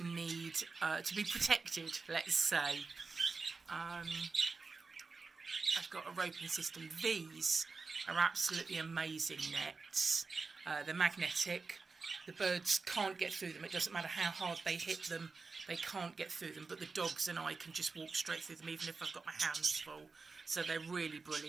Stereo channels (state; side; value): quieter; left; 4.3 dB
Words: need to be protected, let's say. I've got a roping system. These are absolutely amazing nets. They're magnetic. The birds can't get through them. It doesn't matter how hard they hit them, they can't get through them. But the dogs and I can just walk straight through them, even if I've got my hands full. So they're really